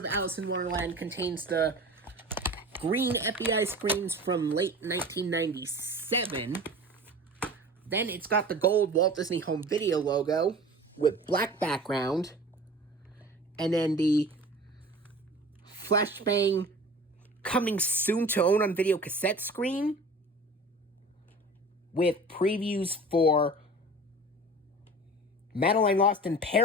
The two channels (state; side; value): normal; both; correlation 0.38